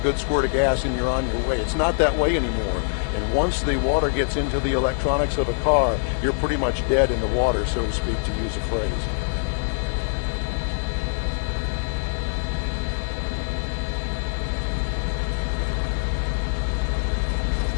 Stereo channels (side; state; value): right; silent; digital silence